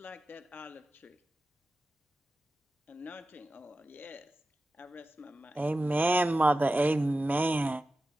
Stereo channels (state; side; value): normal; both; correlation 0.93